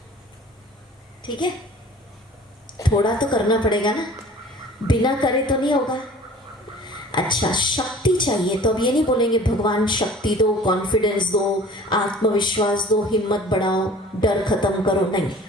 ठीक है? थोड़ा तो करना पड़ेगा ना, बिना करे तो नहीं होगा। अच्छा, शक्ति चाहिए तो अब ये नहीं बोलेंगे भगवान शक्ति दो, कॉन्फिडेंस दो, आत्मविश्वास दो, हिम्मत बढ़ाओ, डर खत्म करो, नहीं।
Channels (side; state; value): both; normal; correlation 0.46